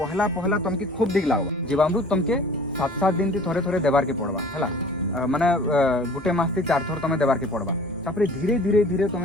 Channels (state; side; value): normal; both; correlation 0.47